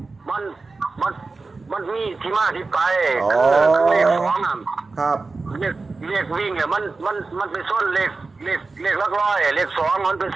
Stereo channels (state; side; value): quieter; left; 3.8 dB